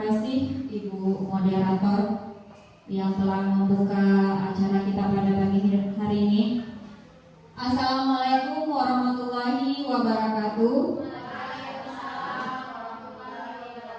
Ibu Moderator yang telah membuka acara kita pada pagi hari ini. Assalamualaikum warahmatullahi wabarakatuh.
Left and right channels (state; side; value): identical; both; correlation 1.00